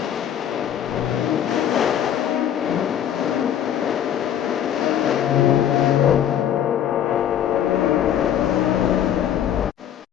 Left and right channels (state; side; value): quieter; right; 9.9 dB